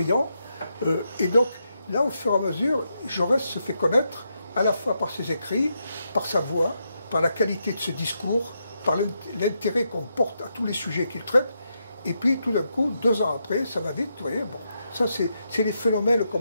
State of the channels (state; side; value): inverted; both; correlation -0.82